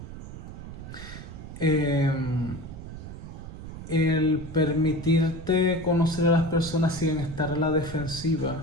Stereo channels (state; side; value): noise; right; rumble, 11 dB below the sound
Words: el permitirte conocer a las personas sin estar a la